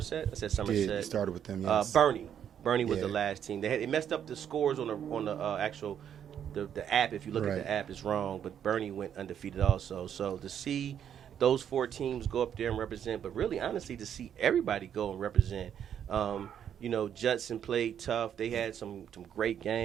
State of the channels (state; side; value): quieter; left; 9.1 dB